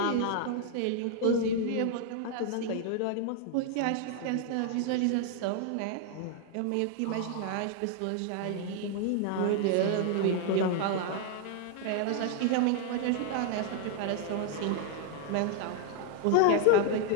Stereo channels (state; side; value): different; both; correlation 0.00